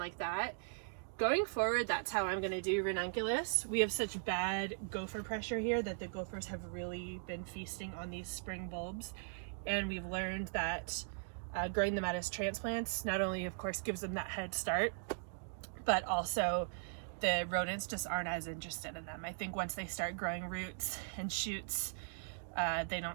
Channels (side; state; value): left; silent; digital silence